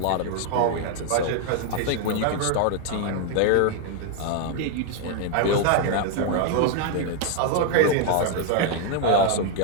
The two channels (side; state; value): both; different; correlation 0.00